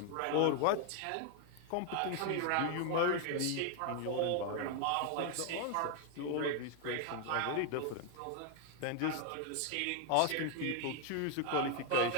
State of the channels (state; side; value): different; both; correlation 0.01